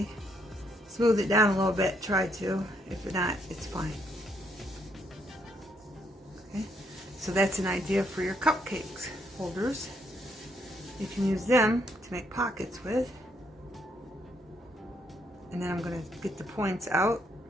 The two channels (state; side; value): normal; both; correlation 0.73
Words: Smooth it down a little bit. Try to. If not, it's fine. So that's an idea for your cupcakes holders. You can use them to make pockets with. And then I'm going to get the points out.